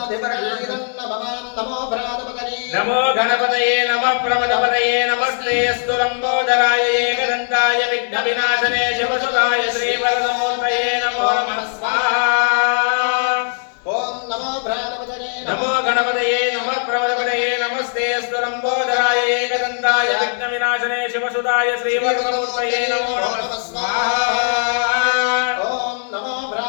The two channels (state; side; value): silent; right; digital silence